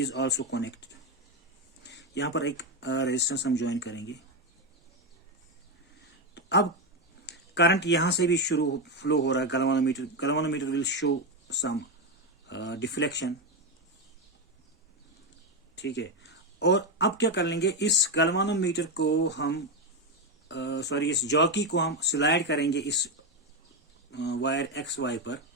also connected. यहां पर एक रेजिस्टेंस हम ज्वाइन करेंगे। तो अब करंट यहां से भी फ्लो हो रहा है। Galvanometer will show some deflection. ठीक है, और अब क्या कर लेंगे, इस गैल्वेनोमीटर को हम इस जॉकी को हम स्लाइड करेंगे इस वायर XY पर।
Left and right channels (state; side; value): normal; both; correlation 0.09